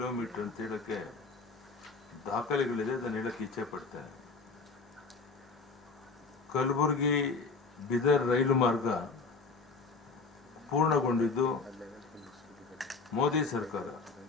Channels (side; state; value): right; quieter; 4.3 dB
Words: ಅಂತ ಹೇಳಕ್ಕೆ ದಾಖಲೆಗಳಿದೆ. ಅದನ್ನು ಹೇಳಕ್ಕೆ ಇಚ್ಛೆ ಪಡ್ತೇನೆ. ಕಲಬುರಗಿ ಬೀದರ್ ರೈಲು ಮಾರ್ಗ ಪೂರ್ಣಗೊಂಡಿದ್ದು ಮೋದಿ ಸರ್ಕಾರ,